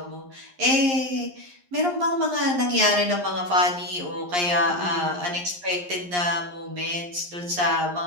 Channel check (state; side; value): late; left; 11 ms